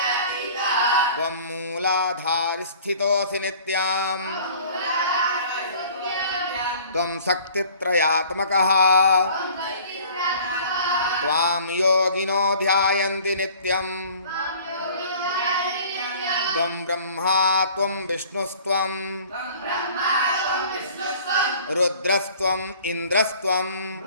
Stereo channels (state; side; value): inverted; both; correlation -0.49